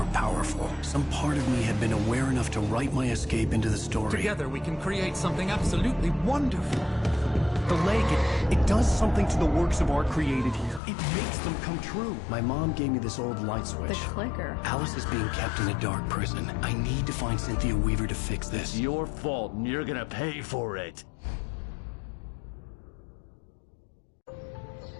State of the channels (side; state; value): right; drops out; at 10.8 s